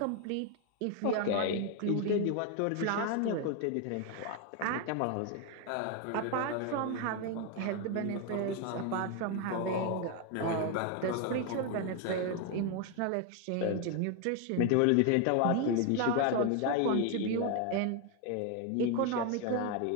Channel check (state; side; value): different; both; correlation 0.01